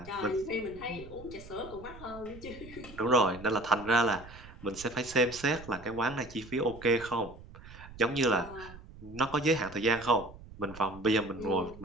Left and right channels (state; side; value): noise; right; rumble, 17 dB below the sound